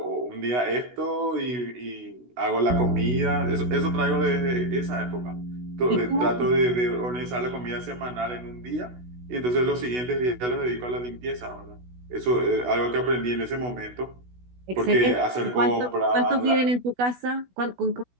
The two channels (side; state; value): left; late; 16 ms